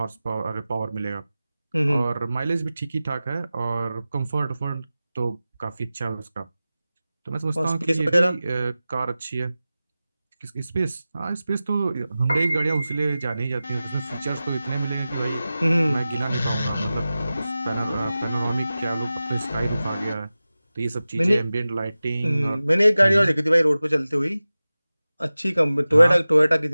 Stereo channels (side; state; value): both; inverted; correlation -0.96